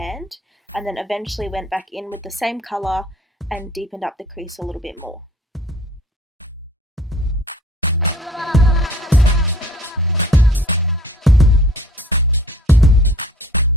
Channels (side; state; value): both; normal; correlation 0.52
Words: and then eventually went back in with the same colour and deepened up the crease a little bit more.